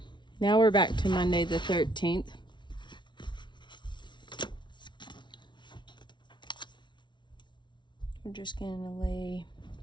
now we're back to Monday the 13th. We're just going to lay...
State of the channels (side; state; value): right; late; 0.23 ms